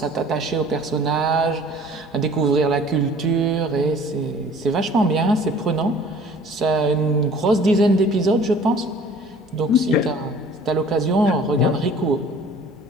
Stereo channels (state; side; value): normal; both; correlation 0.50